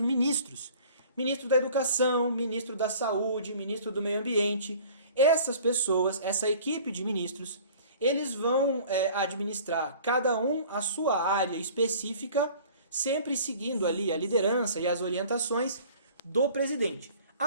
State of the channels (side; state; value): both; inverted; correlation -0.48